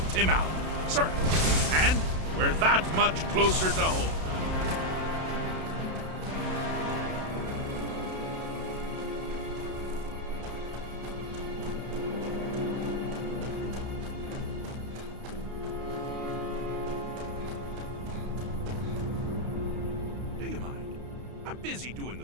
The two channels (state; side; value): late; left; 32 ms